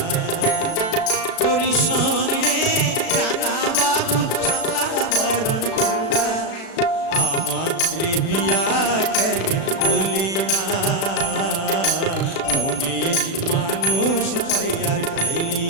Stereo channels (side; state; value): right; late; 36 ms